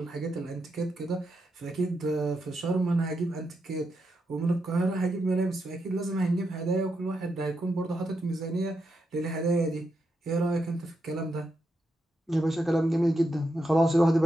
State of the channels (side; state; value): both; normal; correlation 0.84